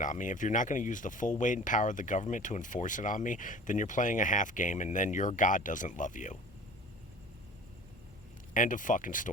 on me, if you're not going to use the full weight and power of the government to enforce it on me, then you're playing a half game, and then your God doesn't love you. End of fucking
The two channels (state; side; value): normal; both; correlation 0.43